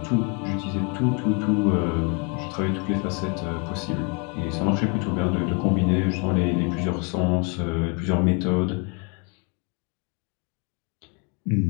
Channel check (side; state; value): right; quieter; 34.7 dB